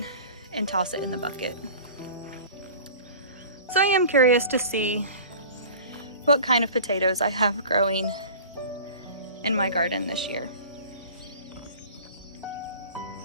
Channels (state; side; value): inverted; both; correlation -0.41